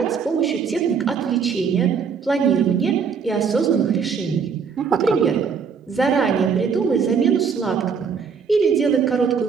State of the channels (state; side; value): quieter; left; 6.1 dB